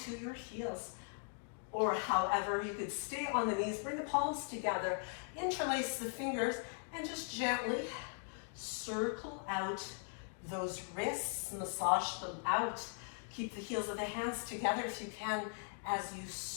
your heels. Or however, you could stay on the knees, bring the palms together, interlace the fingers, and just gently circle out those wrists, massage them out. Keep the heels of the hands together if you can as you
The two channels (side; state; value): right; silent; 51 dB below the other